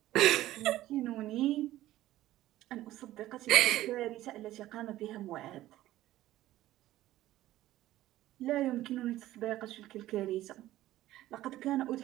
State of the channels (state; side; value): quieter; left; 15.0 dB